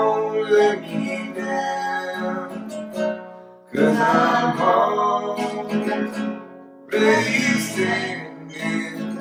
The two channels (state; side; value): identical; both; correlation 1.00